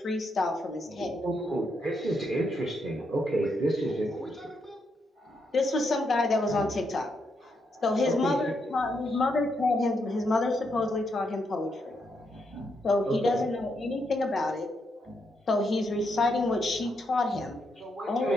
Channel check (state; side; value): normal; both; correlation 0.80